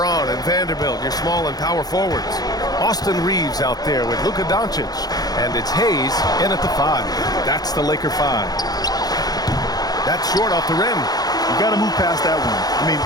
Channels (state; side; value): late; right; 0.19 ms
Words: and Vanderbilt, your small and power forwards. Austin Reeves out there with Luka Doncic. And it's Hayes in at the 5. That's the Laker 5. That's short off the rim. You got to move past that one. I mean,